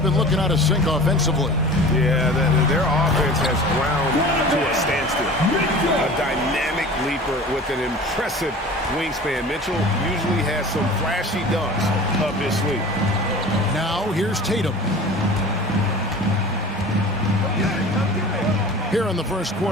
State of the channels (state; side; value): normal; both; correlation 0.40